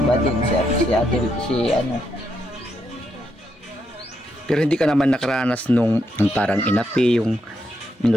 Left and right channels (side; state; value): both; normal; correlation 0.80